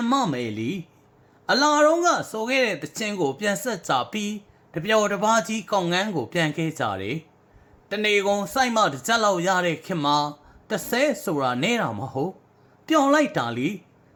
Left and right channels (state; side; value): identical; both; correlation 1.00